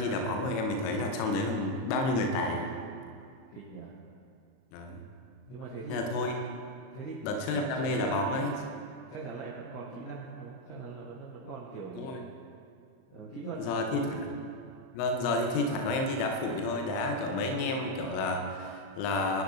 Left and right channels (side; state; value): right; late; 38 ms